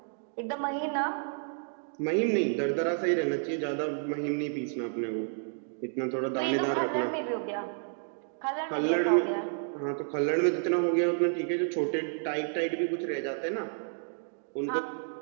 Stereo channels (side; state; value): left; silent; digital silence